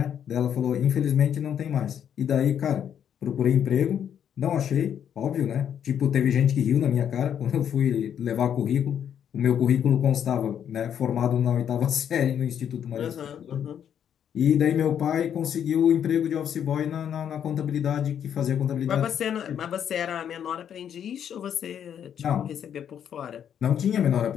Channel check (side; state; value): right; quieter; 9.0 dB